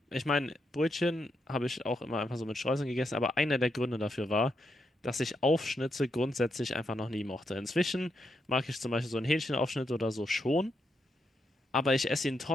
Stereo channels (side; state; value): both; normal; correlation 0.82